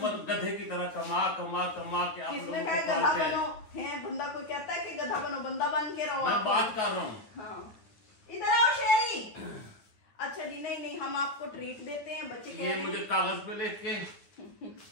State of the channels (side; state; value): right; late; 9.1 ms